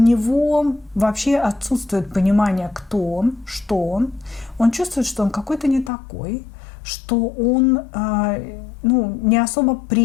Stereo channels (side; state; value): right; drops out; at 5.9 s